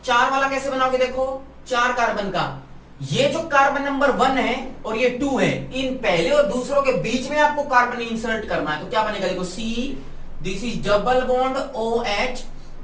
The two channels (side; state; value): both; identical; correlation 1.00